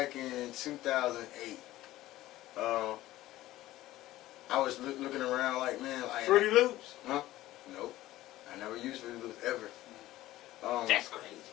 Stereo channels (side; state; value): right; quieter; 15.8 dB